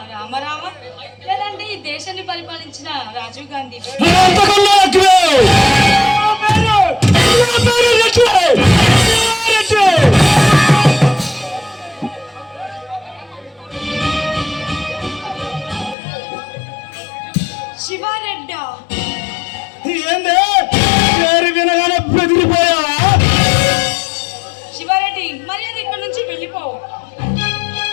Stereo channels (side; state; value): right; drops out; at 16.0 s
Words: రామారావ లేదంటే ఈ దేశాన్ని పరిపాలించిన రాజీవ్ గాంధీ? అంతకన్నా ఎక్కువే. శివారెడ్డా? ఏంది పేరు వినగానే బెదిరిపోయావా? శివారెడ్డి, మర్యాద ఇక్కడ నుంచి వెళ్ళిపో.